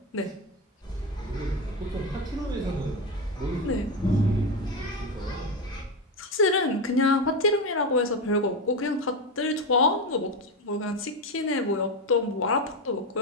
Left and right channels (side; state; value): both; normal; correlation 0.14